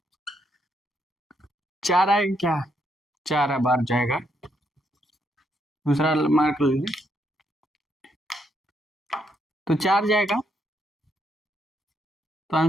4 आएगा क्या, 4 बार जाएगा, दूसरा मार्क लीजिए, तो 4 जाएगा, तो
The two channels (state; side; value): normal; both; correlation 0.76